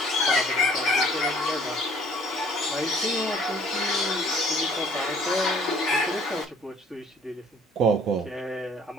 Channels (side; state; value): both; normal; correlation 0.56